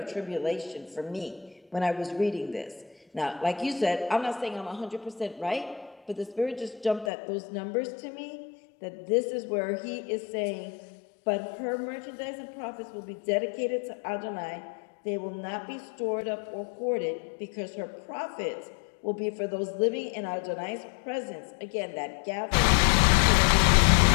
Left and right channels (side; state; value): right; drops out; at 7.1 s